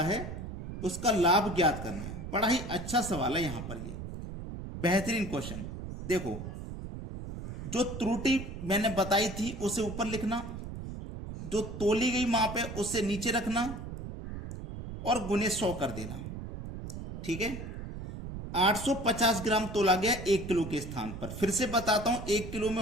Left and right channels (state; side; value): noise; right; rumble, 8 dB below the sound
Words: है, उसका लाभ ज्ञात करना है। बड़ा ही अच्छा सवाल है यहां पर, ये बेहतरीन क्वेश्चन। देखो, जो त्रुटि मैंने बताई थी उसे ऊपर लिखना, जो तोली गई माप है उसे नीचे रखना, और गुने 100 कर देना। ठीक है, 850 ग्राम तोला गया 1 किलो के स्थान पर। फिर से बताता हूं, 1 किलो में